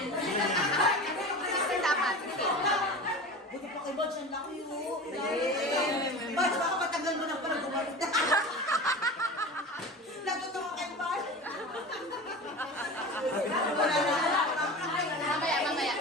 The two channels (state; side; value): normal; both; correlation 0.32